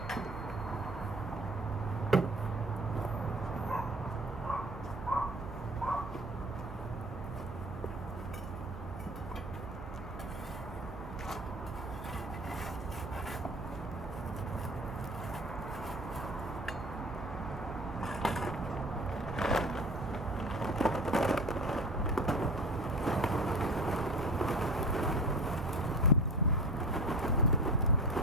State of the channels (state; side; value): normal; both; correlation 0.37